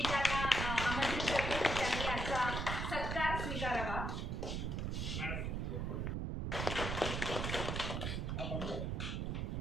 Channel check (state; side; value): noise; right; rumble, 1 dB below the sound